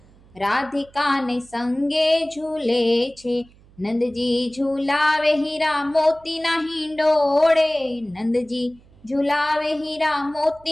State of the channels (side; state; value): right; noise; hum, 27 dB below the sound